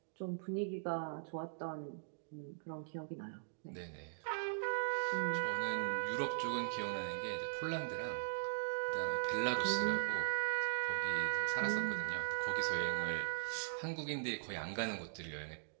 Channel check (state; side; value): silent; left; digital silence